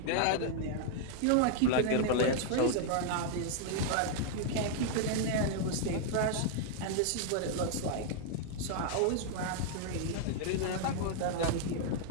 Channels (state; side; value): different; both; correlation 0.00